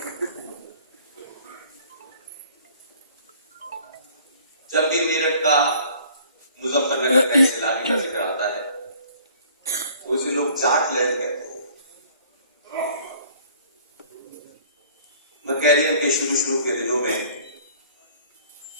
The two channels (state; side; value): inverted; both; correlation -0.54